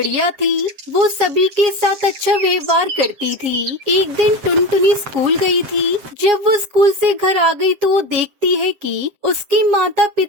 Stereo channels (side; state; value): left; late; 7.7 ms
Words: थी। वो सभी के साथ अच्छा व्यवहार करती थी। एक दिन टुनटुनी स्कूल गई थी। जब वो स्कूल से घर आ गई तो वो देखती है कि उसके माता